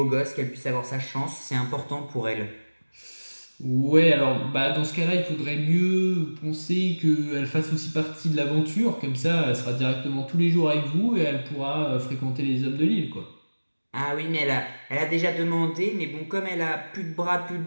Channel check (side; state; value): both; inverted; correlation -1.00